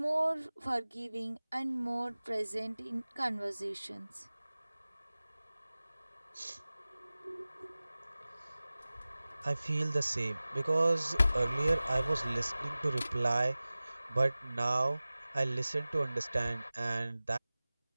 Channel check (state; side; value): inverted; both; correlation -0.98